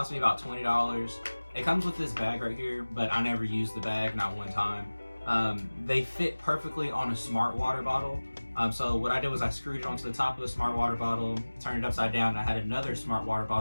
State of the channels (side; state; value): both; inverted; correlation -1.00